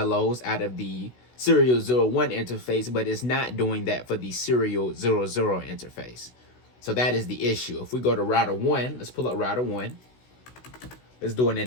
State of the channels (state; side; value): late; right; 16 ms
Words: out of the serial 01 interface, but it's not doing that for the serial 00 interface. So that is the issue. If we go to router 1, let's pull up router 1. Let's do an